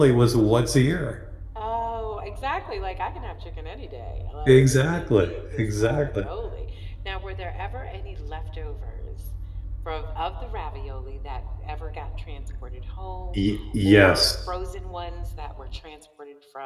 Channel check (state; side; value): identical; both; correlation 1.00